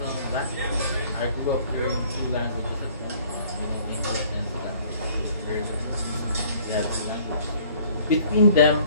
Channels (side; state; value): both; inverted; correlation -0.56